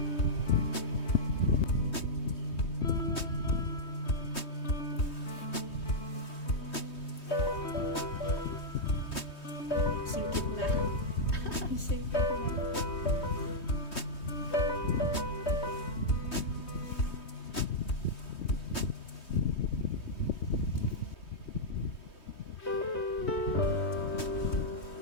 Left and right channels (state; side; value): late; right; 3.2 ms